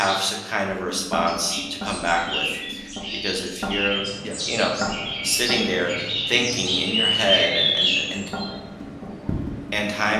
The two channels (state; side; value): identical; both; correlation 1.00